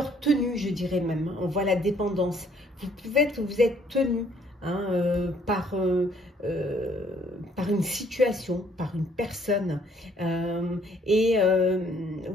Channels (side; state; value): both; normal; correlation 0.63